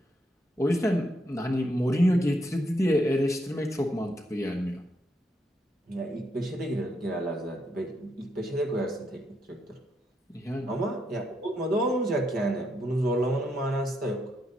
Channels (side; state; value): both; normal; correlation 0.78